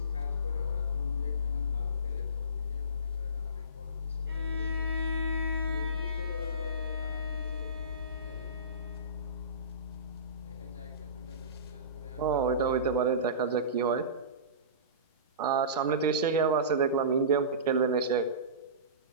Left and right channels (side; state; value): both; inverted; correlation -0.30